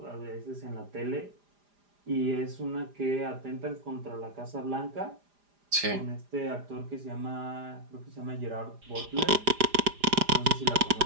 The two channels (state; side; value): late; left; 4.9 ms